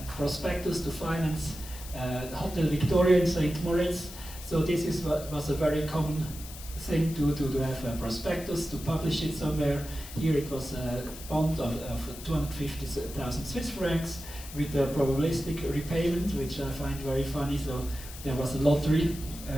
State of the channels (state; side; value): noise; left; hiss, 14 dB below the sound